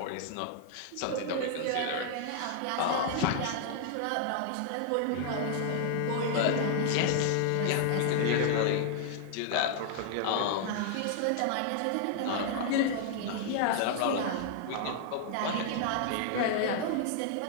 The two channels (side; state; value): both; different; correlation 0.00